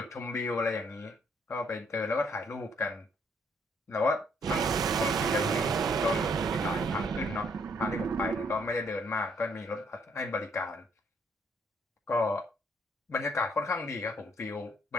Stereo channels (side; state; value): both; normal; correlation 0.68